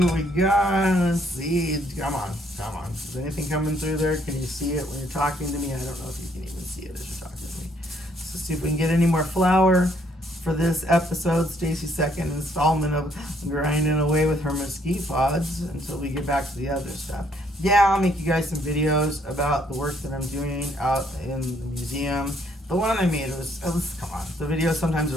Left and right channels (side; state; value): both; normal; correlation 0.68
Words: we got. Let's see. Come on. Is anything coming through there? Can you see it when you're talking to me? I don't know if you can even see it as you're talking to me. So see if we can get any more flour for this episode. Stacy's second installment of grinding away with her mesquite pods until we get back to the other stuff. Yeah, I'll make you guys some videos about the work that I'm doing out in the museum. The one I made was come on. The videos sometimes are